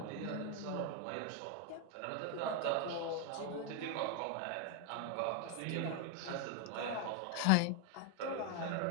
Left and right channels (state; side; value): different; both; correlation 0.01